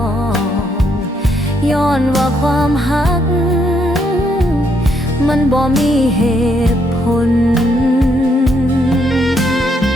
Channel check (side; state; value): both; normal; correlation 0.74